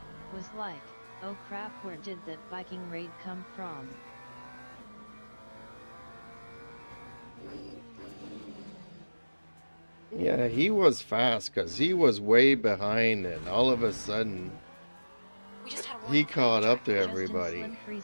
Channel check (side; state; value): both; inverted; correlation -1.00